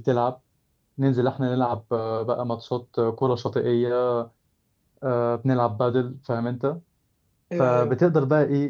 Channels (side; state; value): both; identical; correlation 1.00